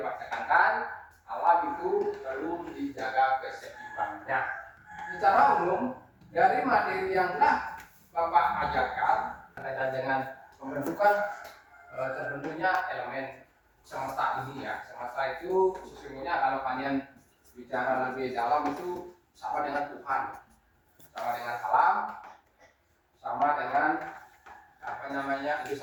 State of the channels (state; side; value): identical; both; correlation 1.00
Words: tekankan, alam itu perlu dijaga keseimbangannya. Secara umum dari materi yang telah Bapak ajarkan berkaitan dengan pembentukan terbentuknya elemen semesta ini ya. Semesta itu sesungguhnya kalau kalian bicara lebih dalam itu sama dengan Tuhan, sama dengan alam, sama dengan